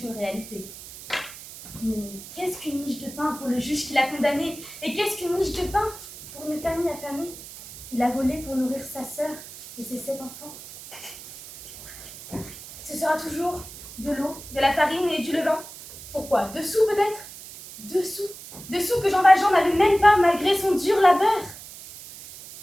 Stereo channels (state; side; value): noise; right; hiss, 15 dB below the sound